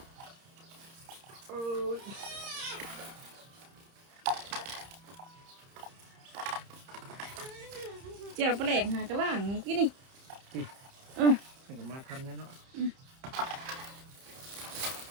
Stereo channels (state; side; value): late; left; 30 ms